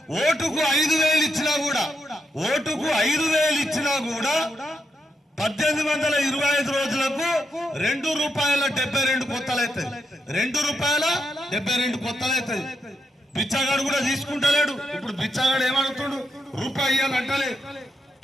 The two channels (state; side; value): normal; both; correlation 0.82